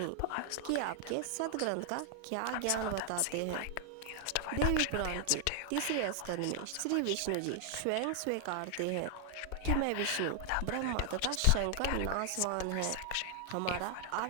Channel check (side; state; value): both; different; correlation 0.00